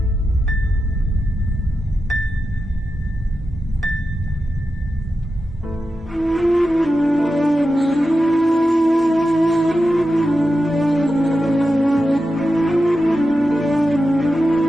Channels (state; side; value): normal; both; correlation 0.90